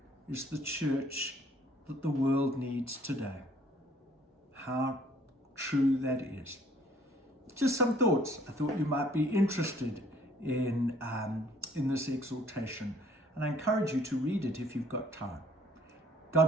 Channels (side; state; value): both; normal; correlation 0.59